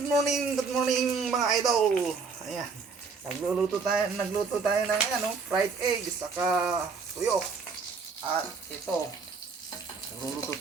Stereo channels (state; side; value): quieter; left; 4.9 dB